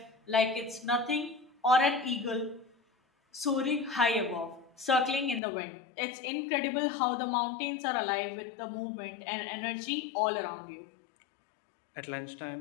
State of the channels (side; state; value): right; drops out; at 5.4 s